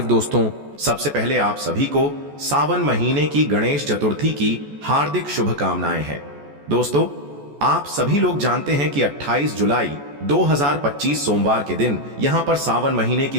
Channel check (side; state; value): left; late; 14 ms